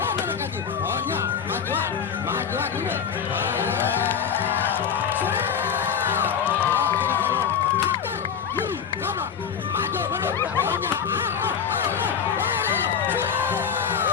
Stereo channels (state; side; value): quieter; right; 7.4 dB